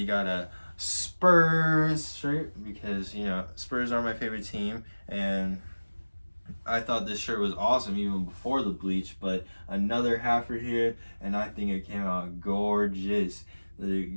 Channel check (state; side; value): inverted; both; correlation -1.00